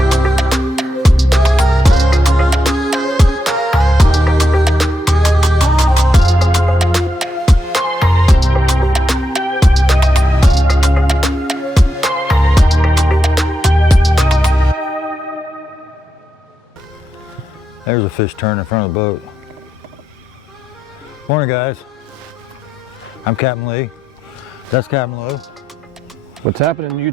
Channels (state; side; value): normal; both; correlation 0.84